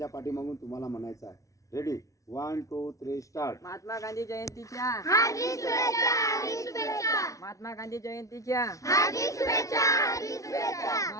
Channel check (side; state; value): right; late; 0.16 ms